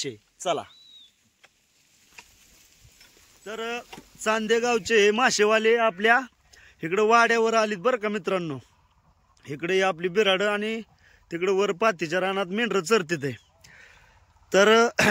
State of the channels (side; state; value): both; identical; correlation 1.00